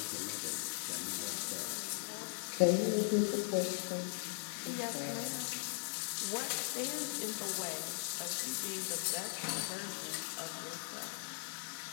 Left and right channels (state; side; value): silent; right; digital silence